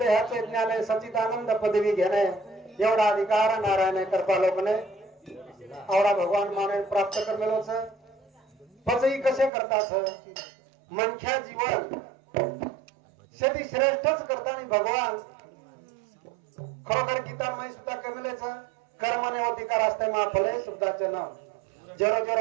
ज्ञान सचिदानंद पदवी घेणे एवढा अधिकार नारायण कृपा लोकने आवडा भगवान माने प्राप्त करमेलोच पचई कसे करतात मनख्या जीवन शेती श्रेष्ठच करताना भगवान खरोखर गीतामय सुद्धा कमेलेच कर्मने अधिकार असते महाफले सुद्धाचे नाव जरो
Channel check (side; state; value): left; drops out; at 9.5 s